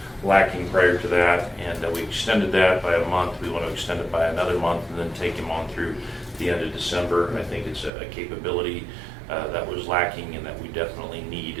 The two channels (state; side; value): drops out; left; at 7.9 s